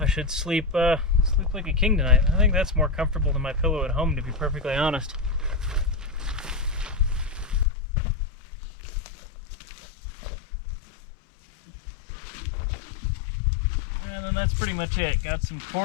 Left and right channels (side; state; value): right; drops out; at 7.7 s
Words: should sleep like a king tonight. I think that's more comfortable than my pillow at home, to be perfectly honest. that's pretty much it. Got some